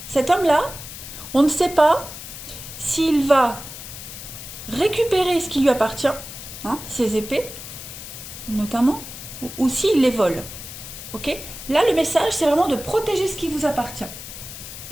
Cet homme-là, on ne sait pas s'il va récupérer ce qui lui appartient, ses épées, notamment, ou s'il les vole. Ok. Là, le message, c'est vraiment de protéger ce qui vous appartient.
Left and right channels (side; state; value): left; noise; hiss, 12 dB below the sound